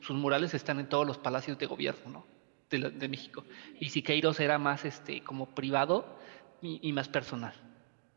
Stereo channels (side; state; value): left; silent; digital silence